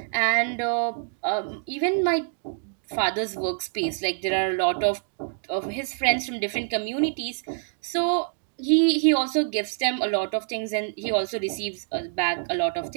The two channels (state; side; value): silent; left; digital silence